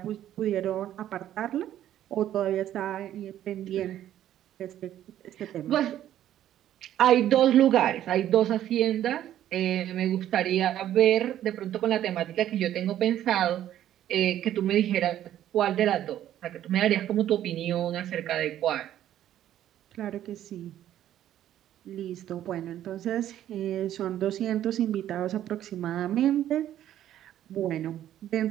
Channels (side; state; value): left; quieter; 11.8 dB